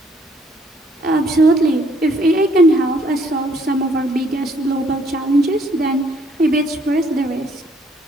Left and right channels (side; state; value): both; normal; correlation 0.66